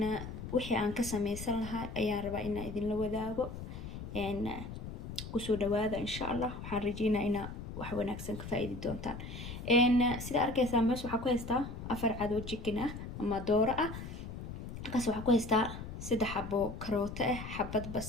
wixii aan ka sameysan lahaa ayaan rabaa inaan idinla wadaago. kusoo dhawaada insha Allah. waxaan rajeynayaa inaa wax wanaagsan ka faa'iidi doontaan. sida arkaysaan meesha waxaa ku haystaa afar cad oo chicken ah ama dooro ah. halkaas waxaa ku haystaa 3 xabo karooto ah, xabad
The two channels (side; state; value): left; noise; rumble, 9 dB below the sound